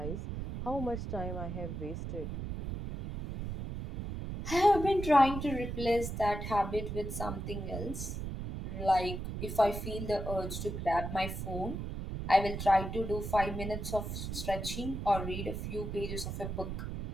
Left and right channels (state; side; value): noise; right; rumble, 5 dB below the sound